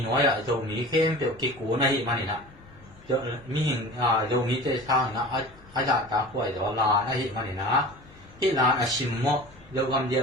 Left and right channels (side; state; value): left; noise; rumble, 24 dB below the sound